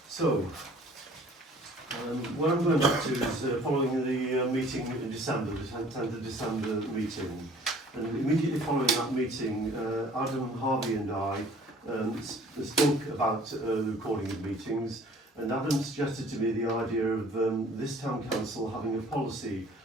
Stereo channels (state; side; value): normal; both; correlation 0.52